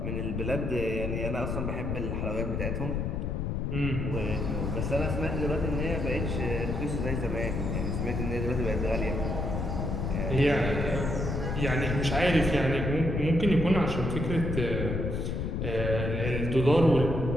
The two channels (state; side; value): noise; left; rumble, 1 dB below the sound